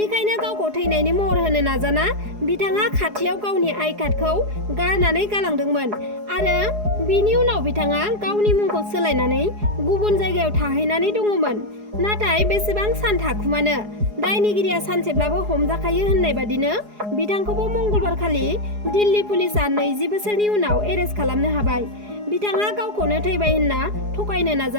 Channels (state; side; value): late; left; 4.8 ms